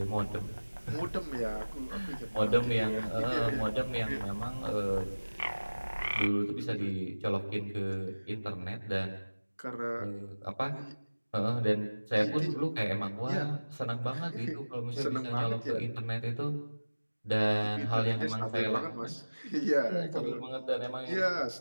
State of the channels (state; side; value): inverted; both; correlation -1.00